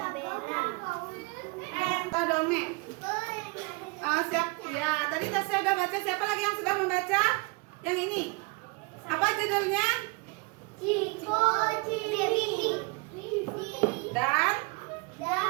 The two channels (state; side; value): quieter; left; 28.2 dB